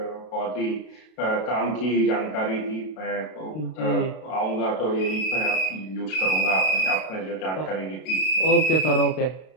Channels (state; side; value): late; right; 32 ms